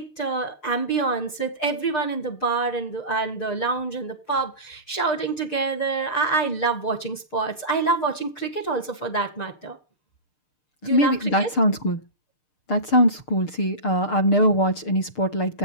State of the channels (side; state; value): right; late; 6.6 ms